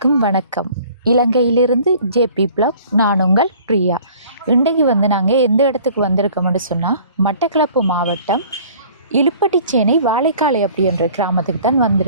வணக்கம். இலங்கையிலிருந்து ஜேபி பிளாக், நான் உங்கள் பிரியா. இன்றைக்கு வந்து நாங்கள் எந்த இடத்துக்கு வந்திருக்கோம்னு சொன்னால் மட்டக்களப்பு மாவட்டம் இலுப்பட்டிச்சேனை வாழைக்காலை அப்படின்ற கிராமத்துக்கு தான்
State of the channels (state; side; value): inverted; both; correlation -0.50